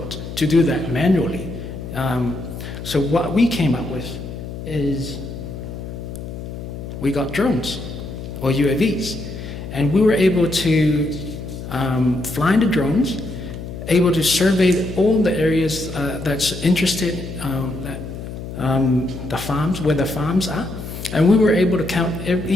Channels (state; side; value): noise; left; hum, 9 dB below the sound